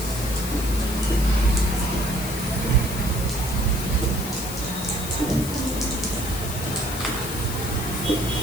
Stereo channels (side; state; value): left; noise; hiss, 9 dB below the sound